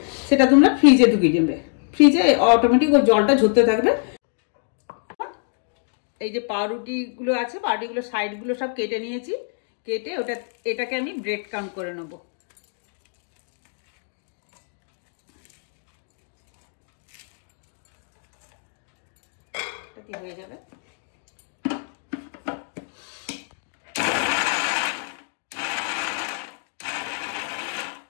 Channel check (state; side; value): silent; right; 60 dB below the other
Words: সেটা তোমরা ফ্রিজে ঢুকিয়ে দেবে। ফ্রিজে অটোমেটিক ওই জলটা ঝরতে থাকবে। এই যে পাউরুটিগুলো আছে, পাউরুটিগুলো সাইডগুলো সব কেটে নিয়েছি। কেটে এটাকে আমি ব্রেড ক্রাম্ব করে নেবো। কি হয়ে যাবে,